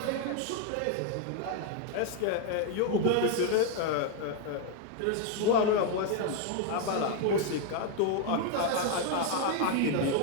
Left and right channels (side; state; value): both; different; correlation 0.00